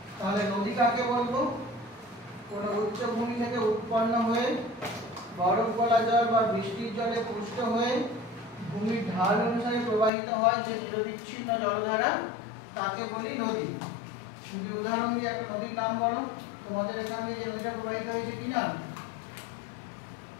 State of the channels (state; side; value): drops out; right; at 10.1 s